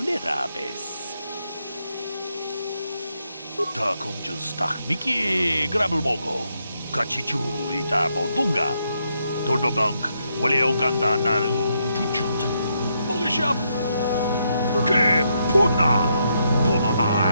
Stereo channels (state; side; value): inverted; both; correlation -0.78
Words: 다 공주 스탁 미끼 그랍을 먹어 같이 주이다 보동가 돌보방크 원래 오간다 나루 주축 먹으샵 그